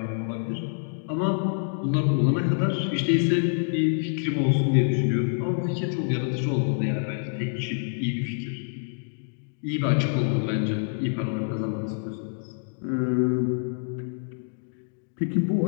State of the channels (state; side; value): silent; right; digital silence